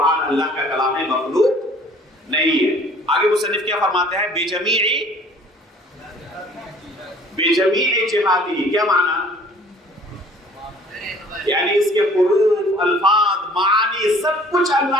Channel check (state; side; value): normal; both; correlation 0.53